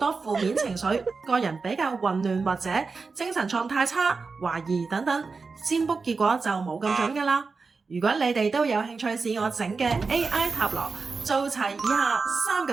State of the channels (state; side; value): quieter; left; 4.5 dB